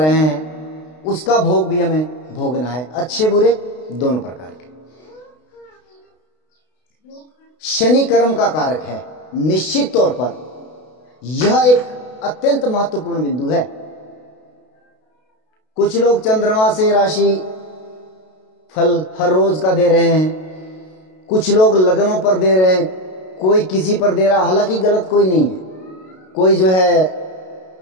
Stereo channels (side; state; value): right; late; 32 ms